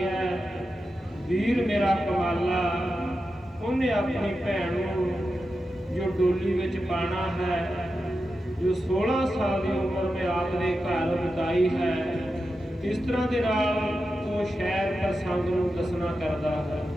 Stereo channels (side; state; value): both; normal; correlation 0.90